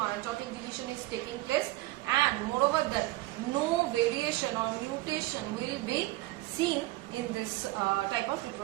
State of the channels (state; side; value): quieter; left; 18.9 dB